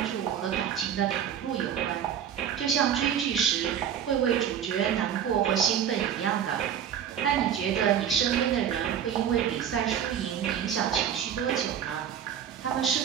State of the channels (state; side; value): quieter; left; 9.0 dB